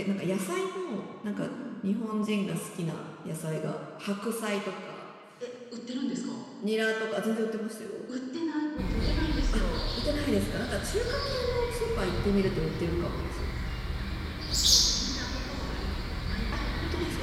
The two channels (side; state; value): both; identical; correlation 1.00